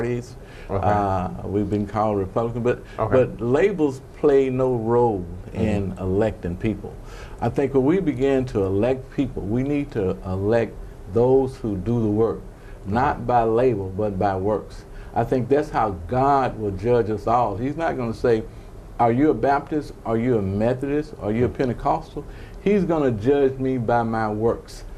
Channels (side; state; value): both; identical; correlation 1.00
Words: We've been called Republican. But labels play no role in electing people. I think when we begin to elect people, we need to elect those who do the work, not by label, but by works. I think that's how God will judge us all. He's not going to say, are you a Baptist, are you a Methodist, are you a Pentecostal? He's going to judge me by my works.